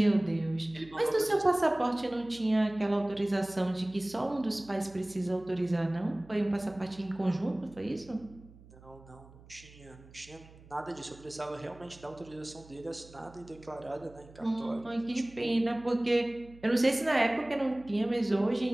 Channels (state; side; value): noise; right; hum, 22 dB below the sound